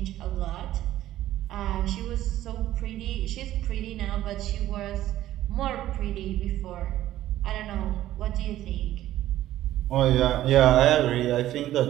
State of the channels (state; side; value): quieter; left; 13.7 dB